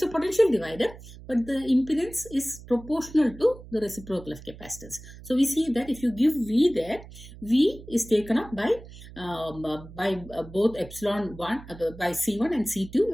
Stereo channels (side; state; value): right; noise; hum, 17 dB below the sound